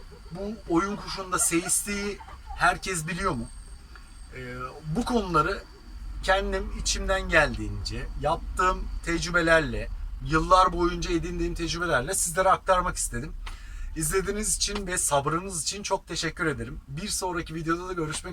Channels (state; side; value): identical; both; correlation 1.00